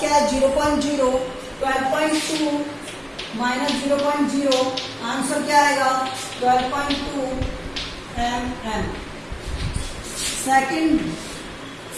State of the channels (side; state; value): both; identical; correlation 1.00